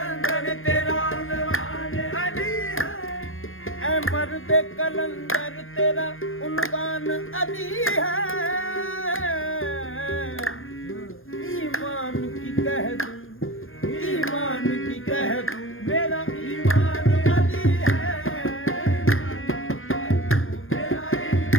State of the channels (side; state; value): right; late; 0.60 ms